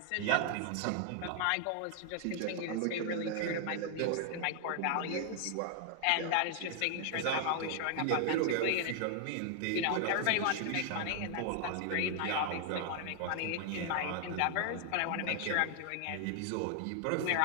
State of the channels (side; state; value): both; different; correlation 0.00